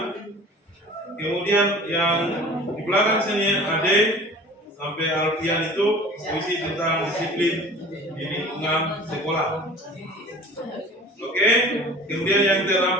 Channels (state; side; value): normal; both; correlation 0.43